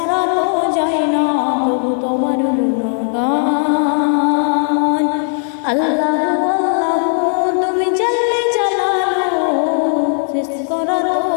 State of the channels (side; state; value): right; silent; 57 dB below the other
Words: তো যায় না কবু তোমার গুণগান। আল্লাহু আল্লাহু তুমি জল্লে জালালু, শেষ করা তো